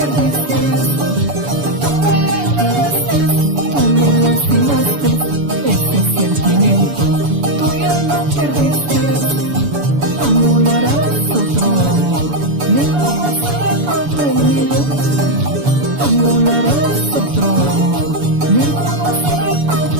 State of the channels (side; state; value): left; late; 7.0 ms